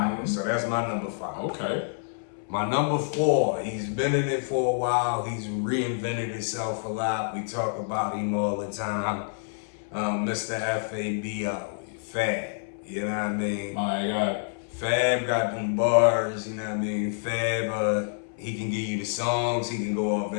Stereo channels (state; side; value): silent; right; 60 dB below the other